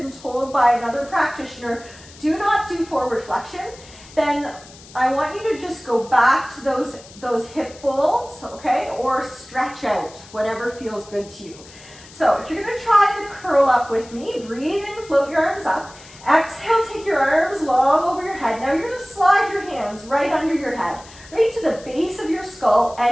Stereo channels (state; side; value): noise; left; hiss, 21 dB below the sound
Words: told by another practitioner, do not do forward flexion, then I want you to just go back to those hip folds, okay? Or stretch out, whatever feels good to you. So if you're gonna try the curl up with me, breathe in, float your arms up. Exhale, take your arms long over your head. Now you're gonna slide your hands right under your head, right to the base of your skull,